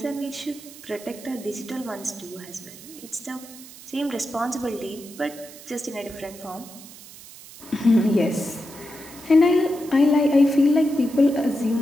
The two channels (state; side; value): noise; right; hiss, 18 dB below the sound